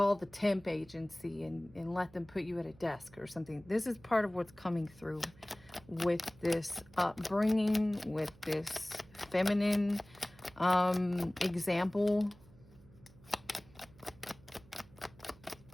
the temp agency and let them put you at a desk or something. This is part of what's coming through with this upbringing, with this feminine example.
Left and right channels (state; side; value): noise; right; hum, 24 dB below the sound